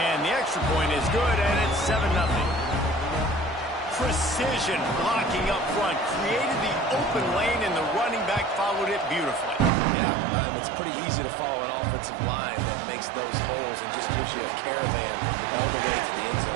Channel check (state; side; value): drops out; left; at 9.7 s